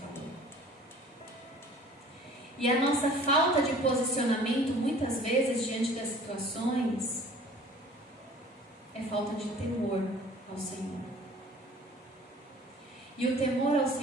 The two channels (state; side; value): normal; both; correlation 0.49